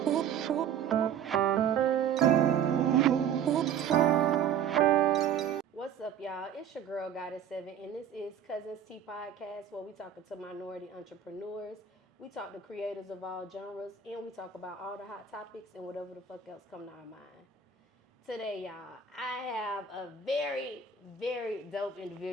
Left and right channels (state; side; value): quieter; left; 7.9 dB